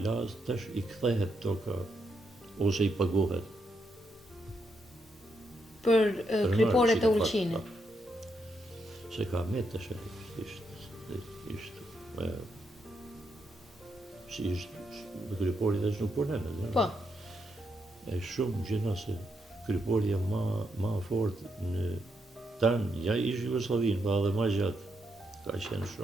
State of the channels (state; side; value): normal; both; correlation 0.80